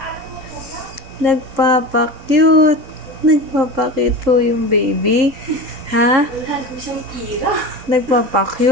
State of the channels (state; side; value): late; left; 3.7 ms